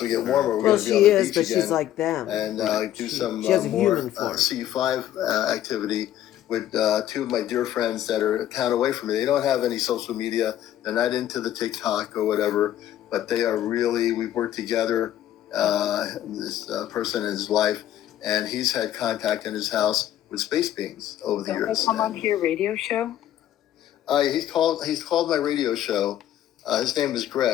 we get warmer. We're Well, going to be she on the is, beach but again she's like them. and do some She has a more human form. C5 activity with two of my dear friends that are a town away from me. They don't have any social media. They're not into the TikTok or whatever, but they are really, we've worked together, this person and his wife, and he's had contact in his house with space beings over the years. Come on to your radio show? He's called my radio show. His name is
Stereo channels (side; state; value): right; quieter; 12.1 dB